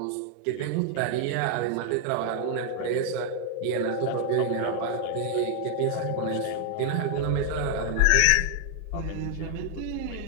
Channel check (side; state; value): both; different; correlation 0.00